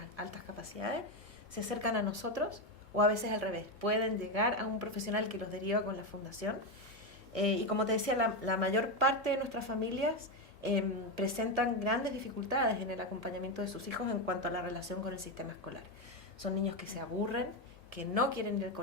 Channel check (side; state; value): both; normal; correlation 0.10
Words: altas capacidades, se acercan a nosotros, o a veces al revés, pueden llegar a un profesional que los deriva con la fundación. Y como te decía, la mayor parte de nuestras familias presentan grandes dificultades en el acompañamiento de sus hijos en cuanto a la relación con el sistema escolar. Son niños que se aburren, que no quieren ir al